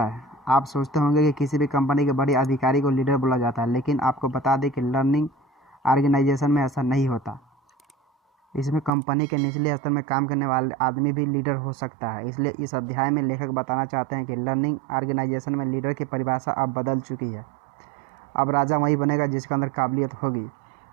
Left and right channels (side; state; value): left; drops out; at 8.9 s